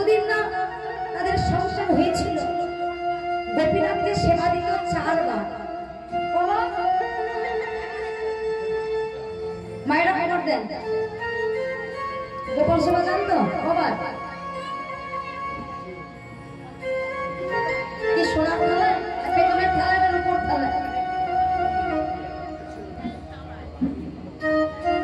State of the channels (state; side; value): identical; both; correlation 1.00